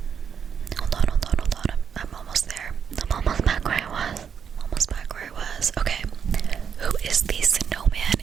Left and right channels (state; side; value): quieter; left; 7.3 dB